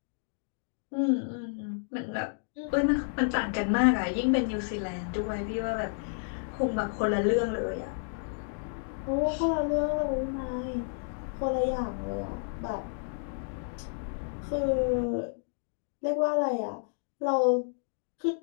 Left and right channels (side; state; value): right; silent; digital silence